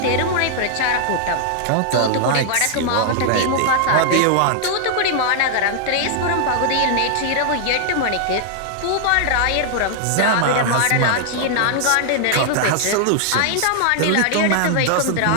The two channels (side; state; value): both; different; correlation 0.00